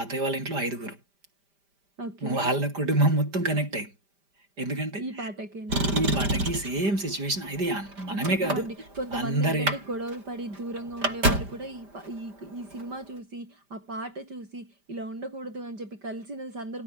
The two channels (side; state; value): left; late; 5.1 ms